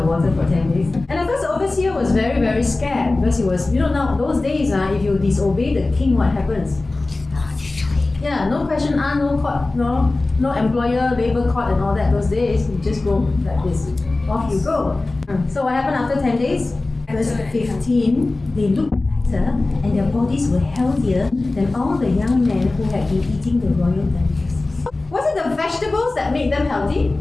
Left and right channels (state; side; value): quieter; right; 3.1 dB